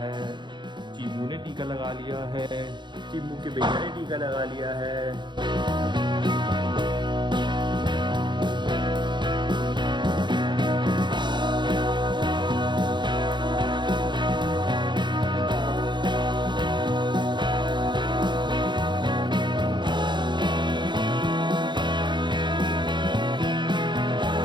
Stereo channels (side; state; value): left; late; 0.22 ms